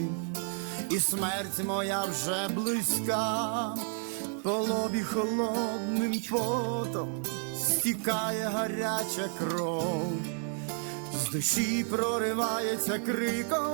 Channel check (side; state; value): left; silent; 57 dB below the other